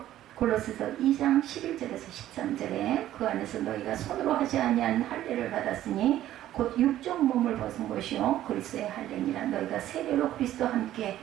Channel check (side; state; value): left; quieter; 13.1 dB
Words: 골로새서 2장 11절에서 13절에 그 안에서 너희가 손으로 하지 아니한 할례를 받았으니 곧 육적 몸을 벗은 것이요 그리스도의 할례니라. 너희가 세례로 그리스도와 함께